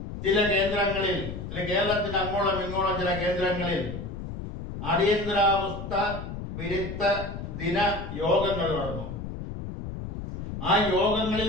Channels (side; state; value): left; noise; rumble, 8 dB below the sound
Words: ചില കേന്ദ്രങ്ങളിൽ, കേരളത്തിന് അങ്ങോളം ഇങ്ങോളം ചില കേന്ദ്രങ്ങളിൽ അടിയന്തരാവസ്ഥ വിരുദ്ധ ദിന യോഗങ്ങൾ നടന്നു. ആ